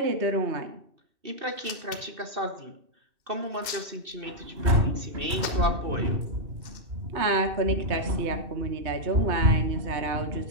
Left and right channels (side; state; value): left; late; 2.6 ms